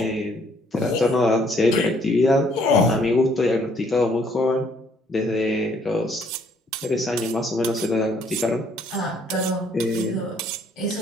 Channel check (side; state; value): both; normal; correlation 0.65